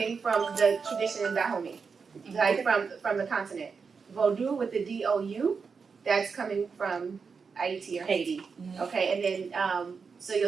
from the tradition in Dahomey, like from the continent. Vodou with the D-O-U, that's coming from Haiti or Haiti. Okay, and then so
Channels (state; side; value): quieter; left; 5.4 dB